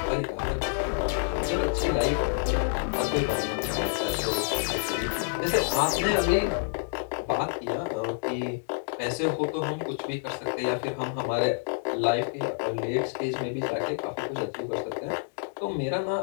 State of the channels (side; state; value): right; silent; digital silence